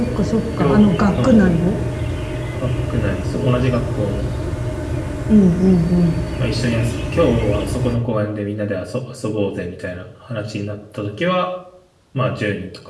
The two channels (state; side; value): identical; both; correlation 1.00